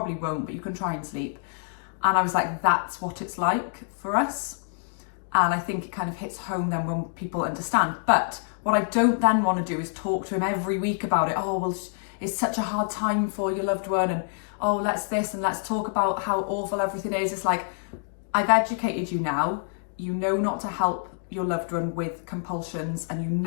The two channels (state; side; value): silent; right; digital silence